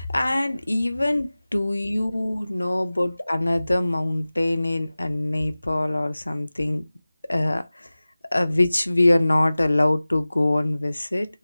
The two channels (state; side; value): inverted; both; correlation -0.98